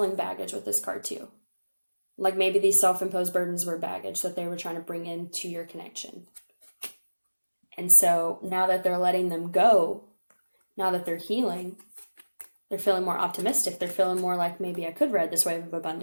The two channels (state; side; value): inverted; both; correlation -1.00